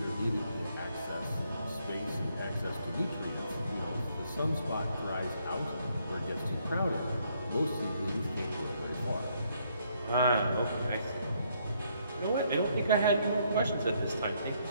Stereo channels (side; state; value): both; inverted; correlation -0.71